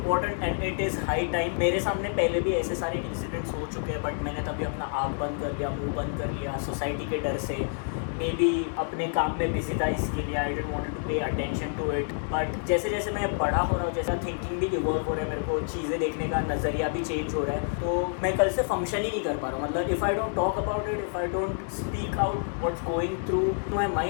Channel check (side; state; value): right; silent; 59 dB below the other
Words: and it is high time. मेरे सामने पहले भी ऐसे सारे इंसिडेंट्स हो चुके हैं, बट मैंने तभी अपना आँख बंद कर लिया, मुंह बंद कर लिया, सोसाइटी के डर से, मे बी अपने काम में बिजी था इसके लिए, I didn't want to pay attention to it. But जैसे जैसे मैं बड़ा हो रहा हूँ, जैसा थिंकिंग भी इवॉल्व हो रहा है, मेरे को चीज़ें देखने का नज़रिया भी चेंज हो रहा है, तो मैं कल से फंक्शन ही नहीं कर पा रहा हूँ। मतलब if I don't talk about it, if I don't speak out what's going through my